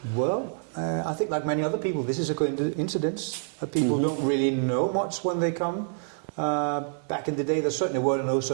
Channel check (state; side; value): silent; left; digital silence